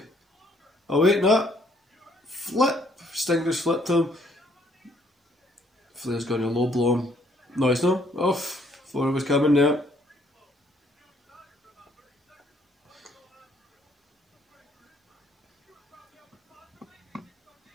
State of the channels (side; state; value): both; normal; correlation 0.66